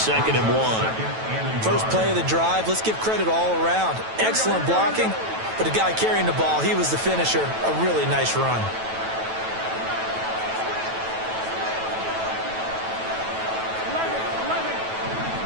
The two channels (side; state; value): left; late; 9.1 ms